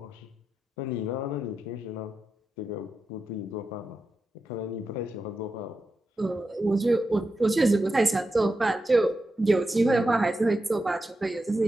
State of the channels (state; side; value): normal; both; correlation 0.89